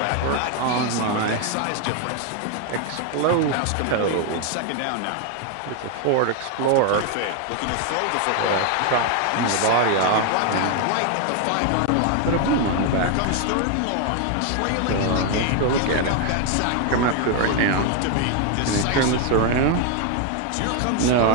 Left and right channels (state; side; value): different; both; correlation 0.01